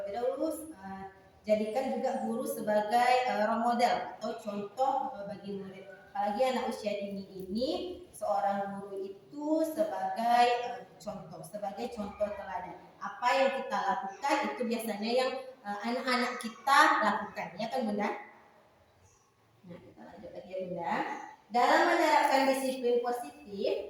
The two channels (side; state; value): both; identical; correlation 1.00